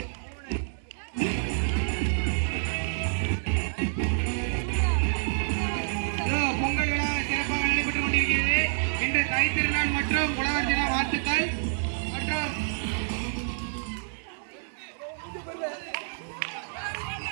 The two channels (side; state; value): left; silent; digital silence